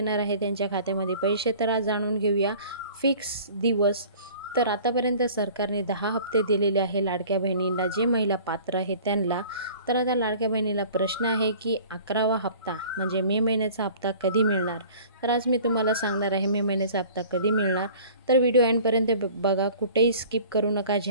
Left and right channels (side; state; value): both; inverted; correlation -0.47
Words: आहे त्यांच्या खात्यामध्ये पैसे, तर आज जाणून घेऊया फिक्स दिवस। तर आतापर्यंत सरकारने 10 हप्ते दिलेले आहे लाडक्या बहिणींना, जे महिला पात्र आहेत त्यांना। तर आता लाडक्या बहिणीला प्रश्न आहे की 11वा हप्ता म्हणजे मे महिन्याचा हप्ता कधी मिळणार। तर आज मी तुम्हाला सांगणार आहे मे महिन्याचा हप्ता कधी मिळणार। तर व्हिडिओ एंडपर्यंत बघा, कुठेही स्किप करू नका।